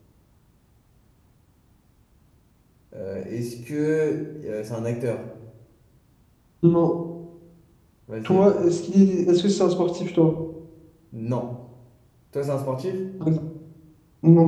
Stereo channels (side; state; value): both; identical; correlation 1.00